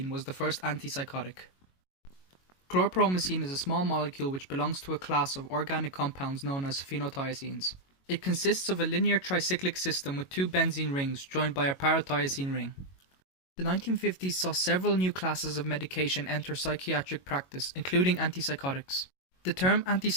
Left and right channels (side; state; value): right; late; 22 ms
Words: was the first antipsychotic. Chlorpromazine is a small molecule which belongs to a class of organic compounds known as phenothiazines. It consists of a linear tricyclic system with two benzene rings joined by a parathiazine ring. The 1950s saw several new classes of medication enter psychiatric practice, including antipsychotics. The term